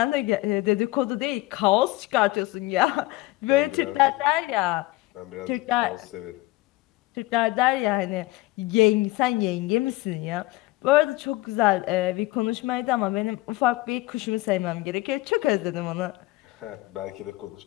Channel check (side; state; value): right; quieter; 19.3 dB